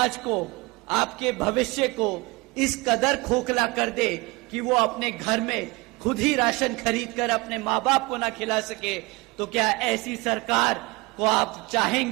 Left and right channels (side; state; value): left; quieter; 24.3 dB